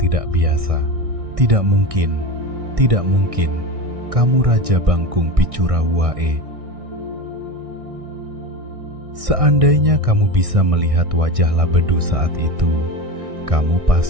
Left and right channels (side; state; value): left; late; 1.6 ms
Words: biasa. Tidak mungkin, kamu Raja Bangkung Picura Wae. Seandainya kamu bisa melihat wajah Labedu saat itu, kamu